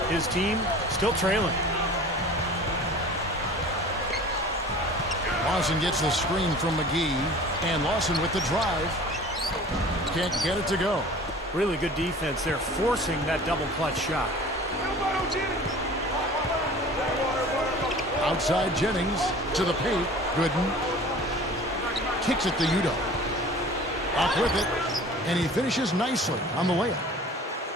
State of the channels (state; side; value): normal; both; correlation 0.43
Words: his team still trailing. Lawson gets the screen from McGee. And Lawson with the drive. Can't get it to go. Really good defense there, forcing that double clutch shot. Outside Jennings to the paint. Gooden kicks it to Udo. Up with it. And he finishes nicely on the layup.